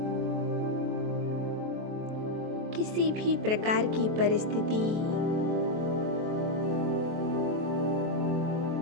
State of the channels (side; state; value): left; late; 23 ms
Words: किसी भी प्रकार की परिस्थिति